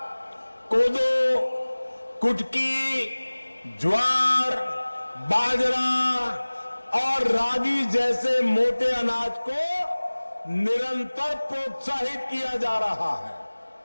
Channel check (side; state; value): both; inverted; correlation -1.00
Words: कोदो, कुटकी, ज्वार, बाजरा और रागी जैसे मोटे अनाज को निरंतर प्रोत्साहित किया जा रहा है।